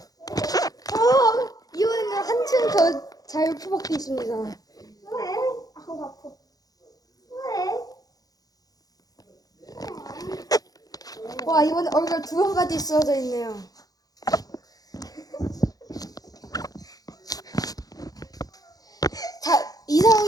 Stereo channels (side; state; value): right; late; 0.18 ms